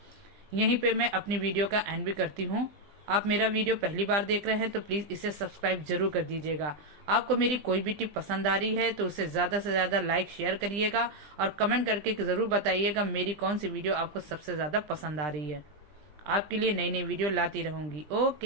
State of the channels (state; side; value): late; left; 20 ms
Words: यहीं पे मैं अपनी वीडियो का एंड भी करती हूँ। आप मेरा वीडियो पहली बार देख रहे हैं तो प्लीज इसे सब्सक्राइब जरूर कर दीजिएगा। आपको मेरी कोई भी टिप पसंद आ रही है तो उसे ज्यादा से ज्यादा लाइक शेयर करिएगा और कमेंट करके जरूर बताइएगा मेरी कौन सी वीडियो आपको सबसे ज्यादा पसंद आ रही है। आपके लिए नई नई वीडियो लाती रहूंगी।